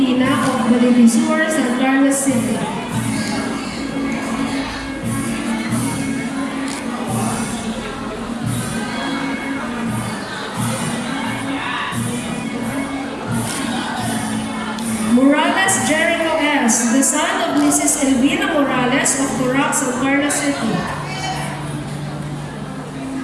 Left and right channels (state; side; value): identical; both; correlation 1.00